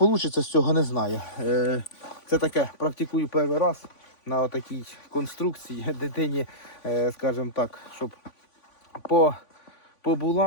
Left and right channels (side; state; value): right; late; 3.5 ms